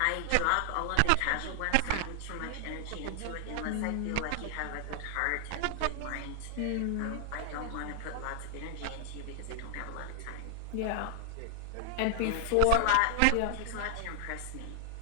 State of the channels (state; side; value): different; both; correlation 0.00